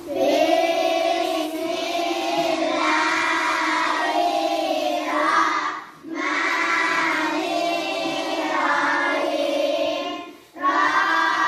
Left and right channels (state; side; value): identical; both; correlation 1.00